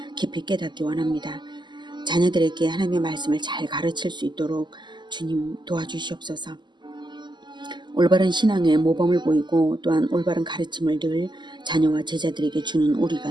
깊이 깨닫기 원합니다. 자녀들에게 하나님의 말씀을 잘 가르칠 수 있도록 주님 도와주시옵소서. 올바른 신앙의 모범을 보이고 또한 올바른 가르침을 늘 자녀와 제자들에게 주는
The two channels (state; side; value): late; left; 0.21 ms